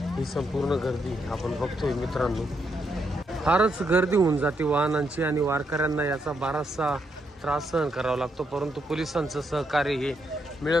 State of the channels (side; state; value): both; normal; correlation 0.79